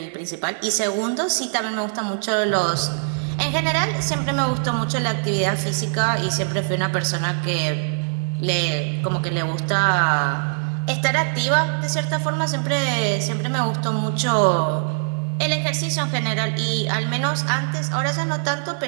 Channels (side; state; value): left; silent; 61 dB below the other